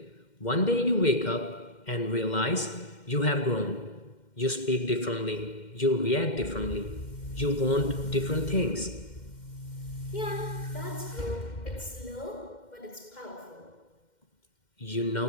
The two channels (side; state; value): right; late; 2.1 ms